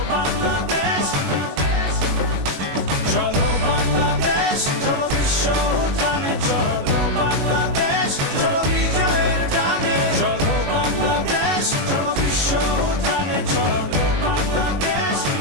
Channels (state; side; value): late; left; 22 ms